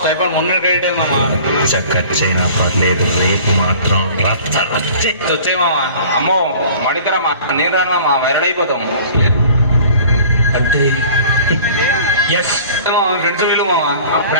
స్టైఫండ్ మొన్న క్రెడిట్ అయింది మామ. చక్కచ్చైనా పర్లేదు, రేపు మాత్రం వచ్చే మామ. అమ్మో మడితరా మా నేను రాను మామ, వైరల్ అయిపోతాం. అంటే ఫ్రెండ్స్ వీళ్ళు మామ.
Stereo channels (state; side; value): inverted; both; correlation -0.46